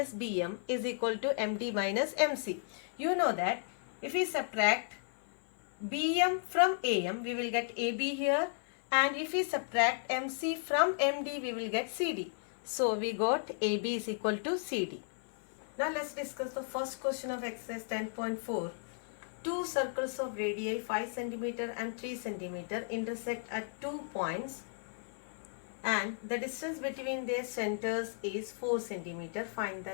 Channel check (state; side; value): silent; right; 55 dB below the other